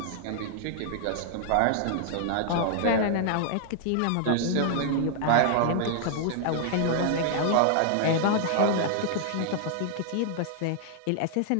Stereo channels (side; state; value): both; different; correlation -0.01